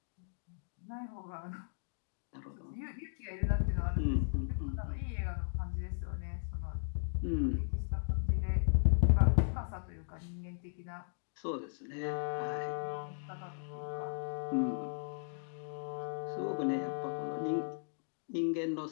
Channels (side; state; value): right; silent; digital silence